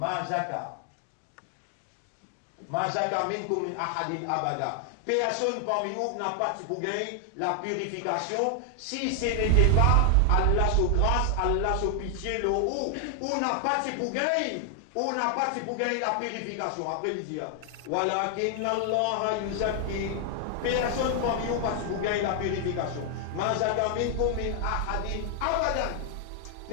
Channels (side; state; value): both; different; correlation 0.00